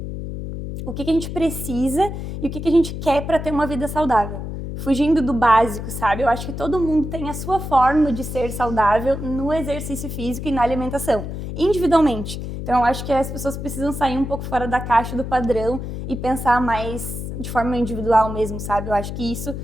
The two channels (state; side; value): noise; left; hum, 6 dB below the sound